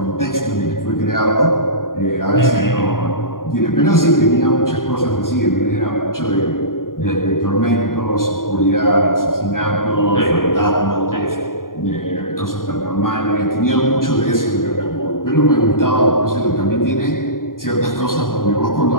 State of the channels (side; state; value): right; late; 0.91 ms